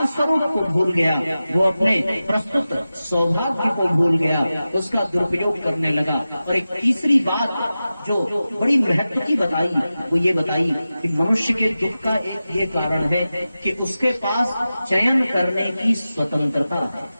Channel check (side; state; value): both; inverted; correlation -0.94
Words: को भूल गया, वो अपने प्रस्तुत सौभाग्य को भूल गया, उसका दुरुपयोग करने लगा। और एक तीसरी बात जो बड़ी महत्व की बताई, वो ये बताई कि मनुष्य के दुख का एक ये कारण है कि उसके पास चयन करने की स्वतंत्रता है।